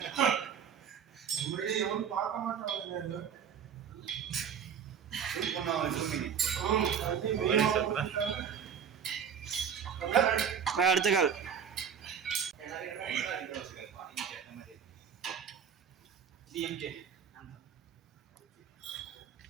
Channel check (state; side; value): quieter; left; 7.6 dB